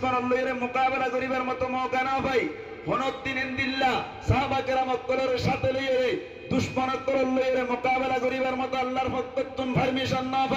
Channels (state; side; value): identical; both; correlation 1.00